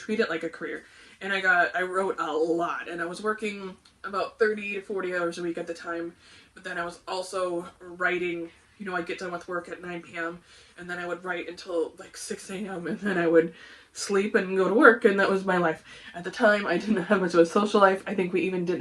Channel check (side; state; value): both; identical; correlation 1.00